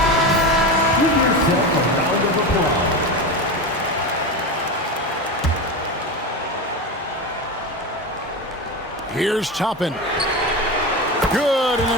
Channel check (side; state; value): both; normal; correlation 0.21